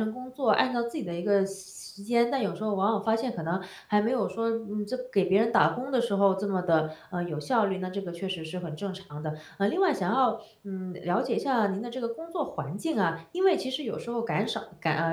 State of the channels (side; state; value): both; identical; correlation 1.00